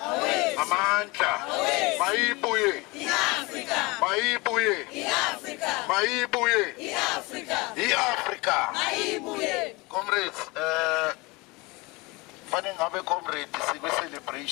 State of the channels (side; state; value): right; quieter; 24.6 dB